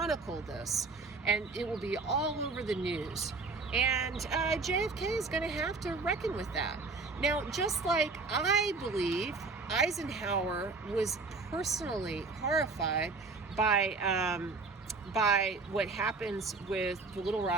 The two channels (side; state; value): left; quieter; 4.0 dB